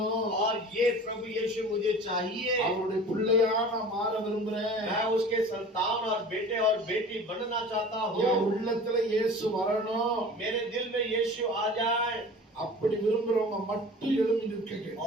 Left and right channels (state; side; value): normal; both; correlation 0.41